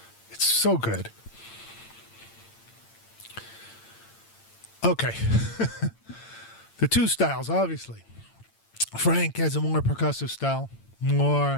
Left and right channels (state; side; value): late; right; 8.8 ms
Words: It's so good. Okay. The two styles, obviously. Frank has a more percussive style,